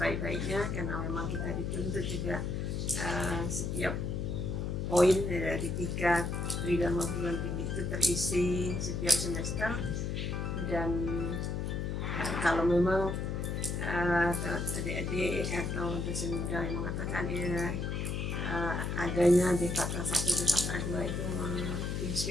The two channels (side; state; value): left; noise; hum, 2 dB below the sound